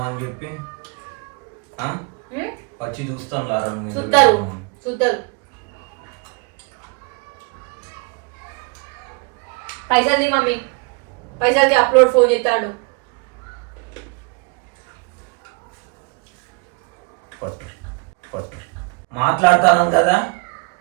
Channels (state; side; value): quieter; left; 32.3 dB